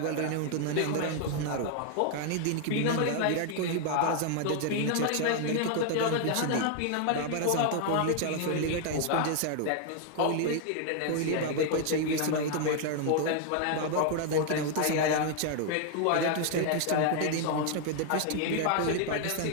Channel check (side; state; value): both; different; correlation 0.00